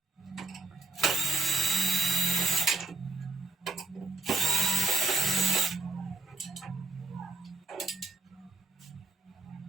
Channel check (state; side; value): quieter; left; 3.2 dB